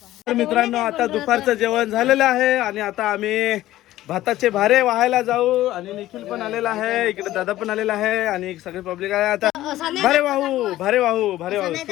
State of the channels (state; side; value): quieter; right; 15.0 dB